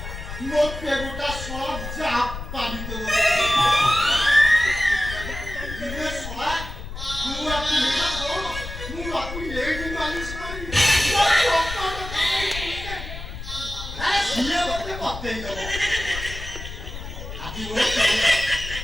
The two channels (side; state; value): left; noise; rumble, 9 dB below the sound